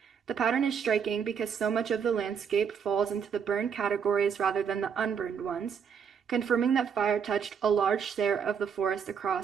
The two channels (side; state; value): left; quieter; 7.1 dB